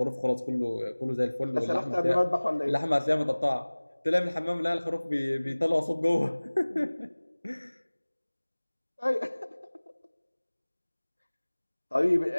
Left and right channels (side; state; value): both; inverted; correlation -1.00